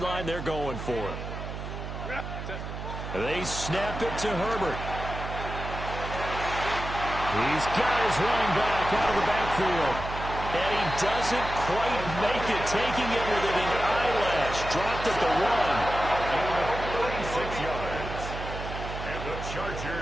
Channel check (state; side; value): noise; right; hum, 7 dB below the sound